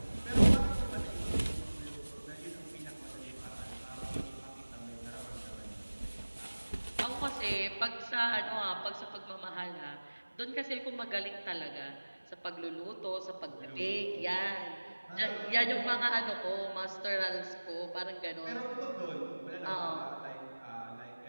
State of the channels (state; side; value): inverted; both; correlation -1.00